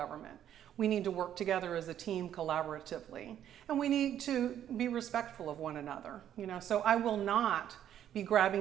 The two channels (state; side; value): quieter; left; 10.5 dB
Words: We need to work together as a team collaboratively, and we need to be respectful of one another. You know, so I will not be